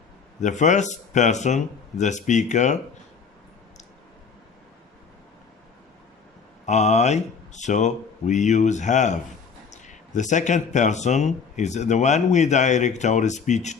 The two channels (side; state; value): right; quieter; 5.8 dB